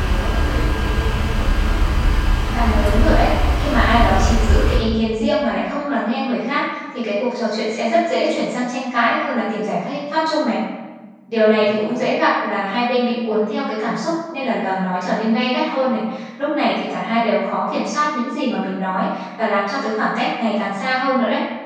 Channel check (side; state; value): both; identical; correlation 1.00